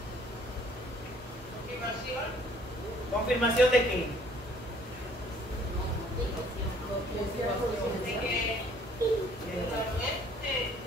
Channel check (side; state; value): both; normal; correlation 0.59